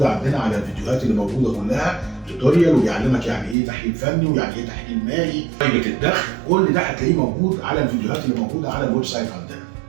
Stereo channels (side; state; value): left; drops out; at 3.6 s